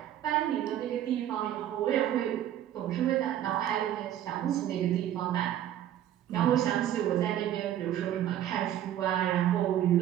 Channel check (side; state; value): left; quieter; 11.5 dB